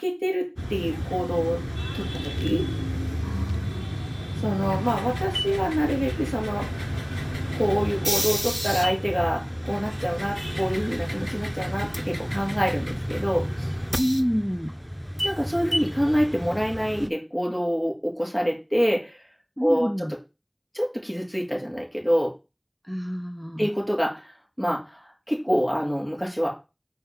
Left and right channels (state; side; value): identical; both; correlation 1.00